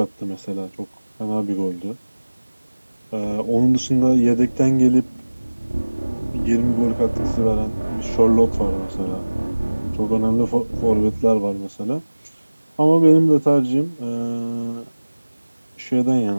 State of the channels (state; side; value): inverted; both; correlation -1.00